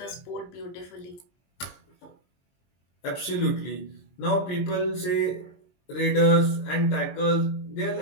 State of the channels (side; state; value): right; late; 23 ms